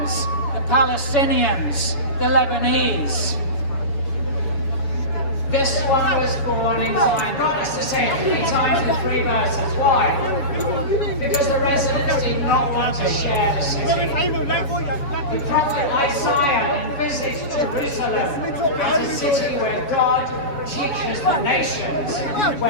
the Palestinians, the Lebanese. This one was born in Zion. God has to say it 3 times in 3 verses. Why? Because the residents did not want to share the city. The prophet Isaiah envisaged Jerusalem as a city where God teaches the nations,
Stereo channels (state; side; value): late; right; 7.2 ms